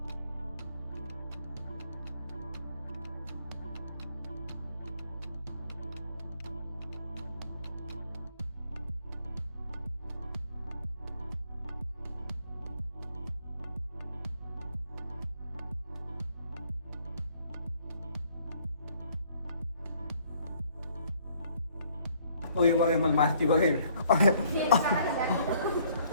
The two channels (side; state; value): both; inverted; correlation -0.63